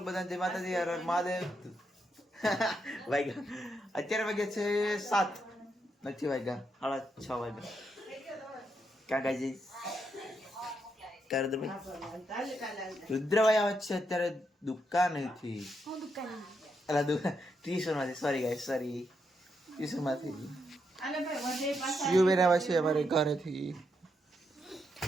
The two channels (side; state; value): both; normal; correlation 0.80